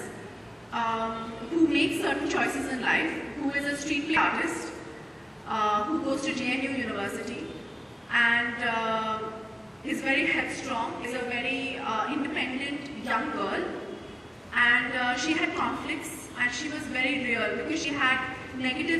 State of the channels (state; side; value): identical; both; correlation 1.00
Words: who makes certain choices in life, who is a street play artist, who goes to JNU University, and is very headstrong, is a very independent young girl, and she had conflicts, and she was very real because she had